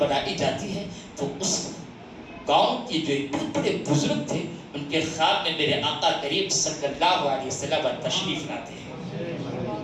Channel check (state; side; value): identical; both; correlation 1.00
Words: بنائی جاتی ہے. تو اس گاؤں کے جو بڑے بزرگ تھے ان کے خواب میں میرے آقا کریم صلی اللہ علیہ وسلم تشریف لاتے ہیں.